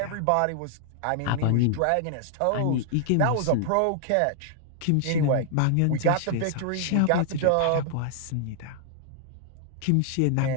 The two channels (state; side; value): different; both; correlation -0.01